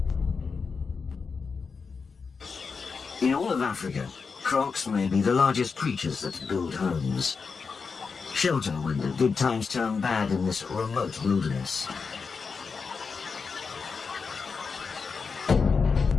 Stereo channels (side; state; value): right; quieter; 5.1 dB